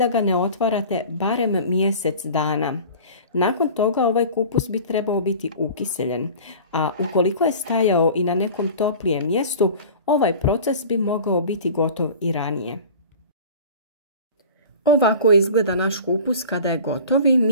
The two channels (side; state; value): both; inverted; correlation -0.40